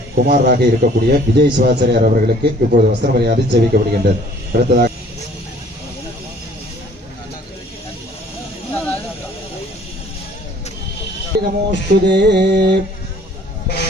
குமாரராக இருக்கக்கூடிய விஜய் சிவாச்சாரியார் அவர்களுக்கு இப்பொழுது வஸ்திர மரியாதை சேவிக்கப்படுகின்றது. அடுத்ததாக நமோஸ்துதே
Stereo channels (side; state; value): both; normal; correlation 0.55